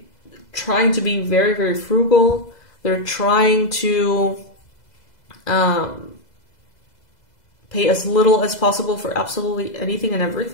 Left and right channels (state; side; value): late; right; 2.0 ms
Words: trying to be very, very frugal. They're trying to pay as little as possible for absolutely anything and